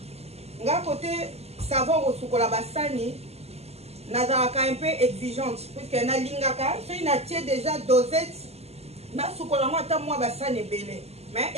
Nga côté savon au sukola basani, nazalaka un peu exigeante puisque na lingaka, so ina tie déjà dosette na sukola mo ata moi basani belé. Mais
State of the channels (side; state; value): left; late; 0.30 ms